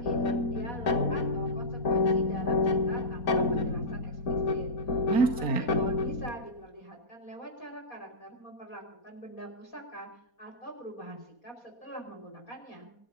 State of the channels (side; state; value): right; late; 4.2 ms